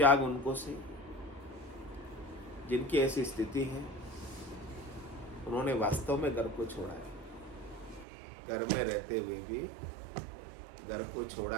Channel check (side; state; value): left; drops out; at 8.1 s